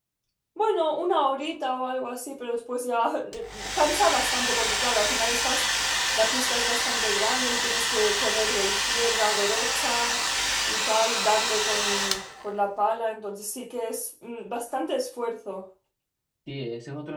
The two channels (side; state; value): both; identical; correlation 1.00